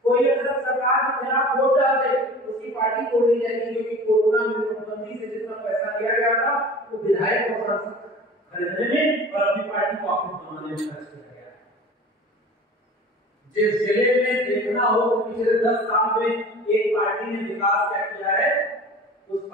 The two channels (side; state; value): both; normal; correlation 0.40